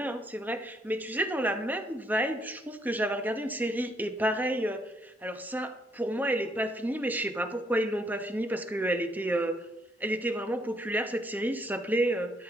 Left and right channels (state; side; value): normal; both; correlation 0.71